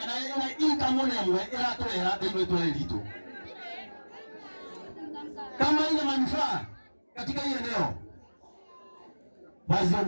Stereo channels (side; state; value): both; inverted; correlation -1.00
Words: inka mone mwe era toya ndio toya lito. Kama ina manufaa katika hii eneo